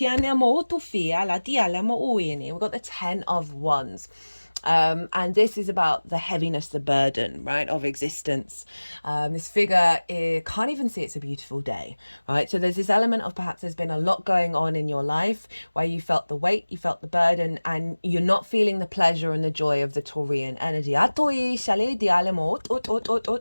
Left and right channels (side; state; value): both; inverted; correlation -1.00